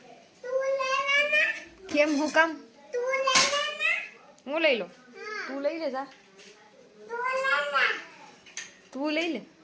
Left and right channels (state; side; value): identical; both; correlation 1.00